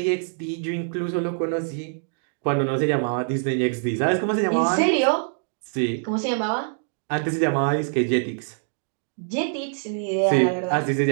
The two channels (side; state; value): left; silent; digital silence